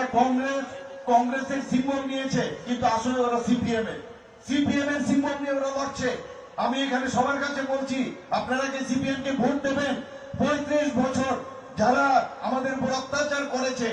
কংগ্রেসের সিম্বল নিয়েছে কিন্তু আসলে ওরা সিপিএম এর সিম্বল নিয়ে ওরা লড়ছে। আমি এখানে সবার কাছে বলছি, আপনারা যে সিপিএম কে ভোট দেবেন, 35 বছর যারা আমাদের উপর অত্যাচার করেছে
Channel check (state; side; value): identical; both; correlation 1.00